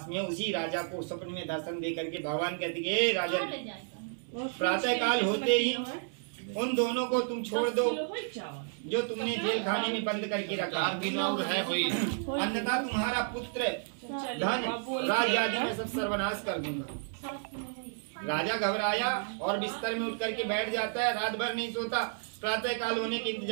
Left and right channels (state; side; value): silent; left; digital silence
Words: में है उसी राजा को स्वप्न में दर्शन दे करके भगवान कहते कि राजा, प्रातः काल होते ही उन दोनों को तुम छोड़ दो जो तुमने जेल खाने में बंद करके रखा है, अन्यथा तुम्हारा पुत्र धन राज्य आदि में सब सर्वनाश कर दूंगा। राजा घबराया और बिस्तर में उठ करके बैठ जाता है, रात भर नहीं सोता, प्रातः काल होने के